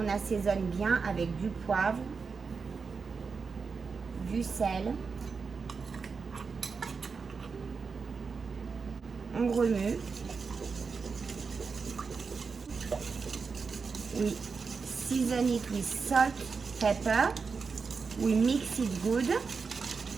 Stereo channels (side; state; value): left; quieter; 5.1 dB